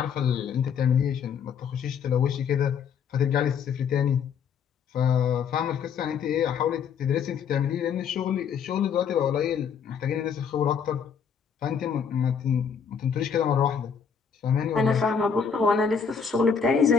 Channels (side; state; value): right; quieter; 6.8 dB